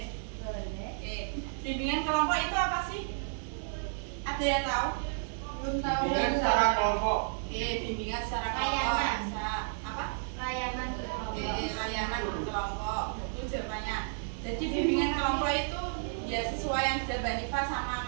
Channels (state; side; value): silent; left; digital silence